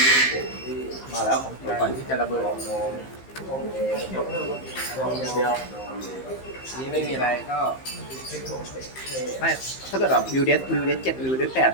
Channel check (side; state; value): right; late; 15 ms